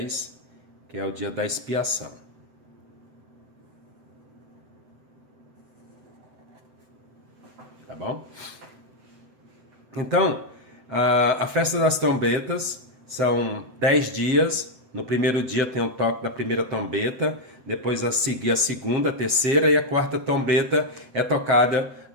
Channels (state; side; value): late; left; 7.9 ms